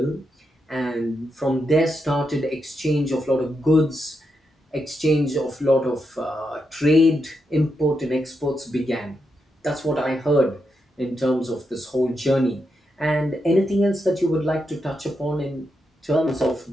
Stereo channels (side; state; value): both; normal; correlation 0.84